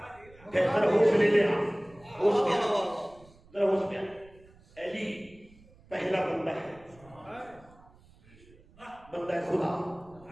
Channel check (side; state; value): right; noise; rumble, 26 dB below the sound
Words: ذرا ہوش لے لے، ہوش میں ذرا ہوش میں. علی پہلا بندہ ہے، بندہ ہے خدا.